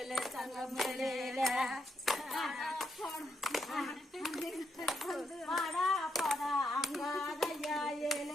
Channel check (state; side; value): normal; both; correlation 0.79